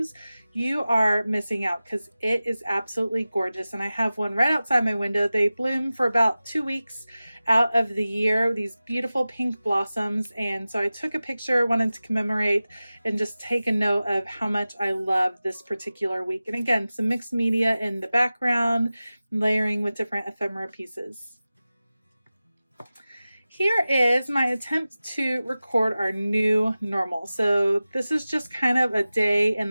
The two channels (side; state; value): both; inverted; correlation -0.96